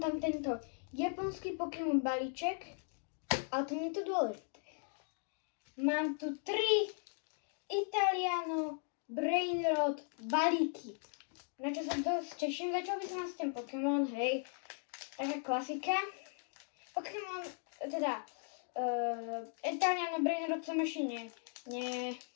tam tento japonský Pokémon balíček, ale to nie je to dôležité. Mám tu 3 Italiano Brainrot balíky, na čo sa dosť teším. Začal by som s tým Pokémon, hej, taká klasika. Pokémon, teda Italiano Brainrot som ešte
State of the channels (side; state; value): right; silent; 53 dB below the other